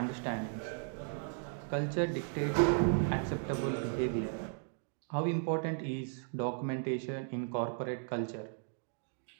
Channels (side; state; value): left; silent; 54 dB below the other